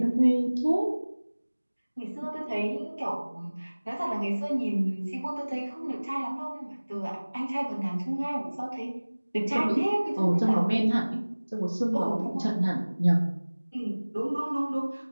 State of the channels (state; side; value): inverted; both; correlation -1.00